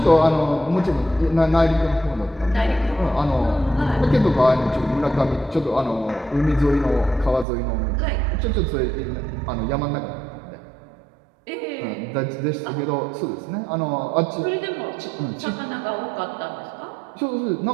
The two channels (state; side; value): drops out; left; at 7.5 s